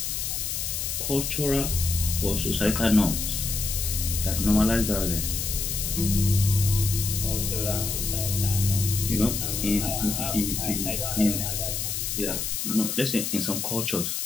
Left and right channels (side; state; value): left; noise; hiss, 2 dB below the sound